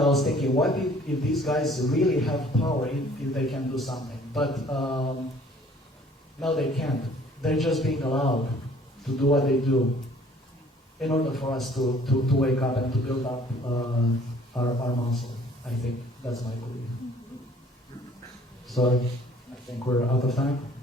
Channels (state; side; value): normal; both; correlation 0.55